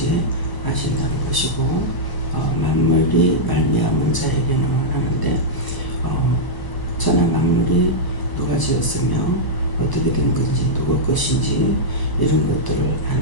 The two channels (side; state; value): right; late; 1.0 ms